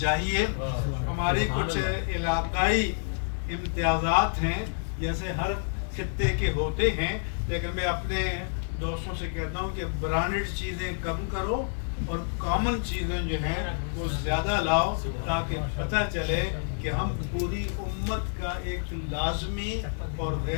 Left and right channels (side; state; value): right; silent; digital silence